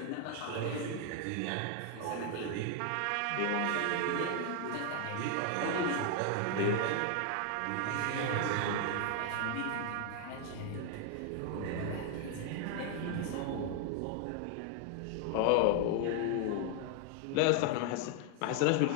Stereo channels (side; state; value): both; different; correlation 0.00